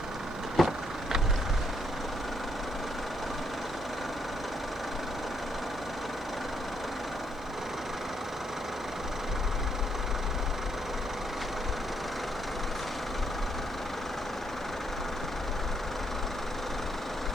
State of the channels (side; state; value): right; noise; hiss, 29 dB below the sound